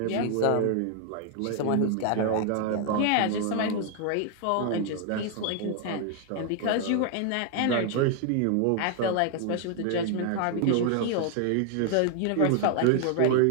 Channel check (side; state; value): both; different; correlation 0.00